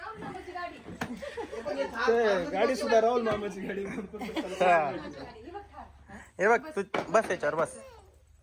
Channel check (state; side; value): identical; both; correlation 1.00